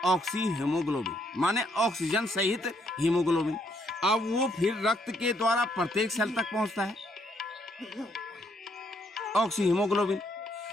ऑक्सी हीमोग्लोबिन, माने ऑक्सीजन सहित हीमोग्लोबिन। अब वो फिर रक्त के द्वारा प्रत्येक सेल तक पहुंचता है ऑक्सी हीमोग्लोबिन।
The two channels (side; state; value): both; normal; correlation 0.72